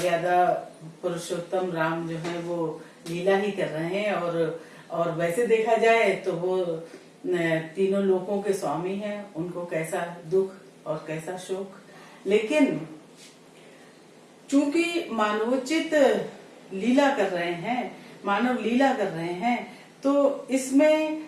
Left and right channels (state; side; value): identical; both; correlation 1.00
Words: पुरुषोत्तम राम जो है वो लीला ही कर रहे हैं और वैसे देखा जाए तो वो तीनों लोकों के स्वामी हैं। उनको कैसा दुख और कैसा शोक, लेकिन चूंकि मानवोचित लीला कर रहे हैं, मानव लीला कर रहे हैं, तो इसमें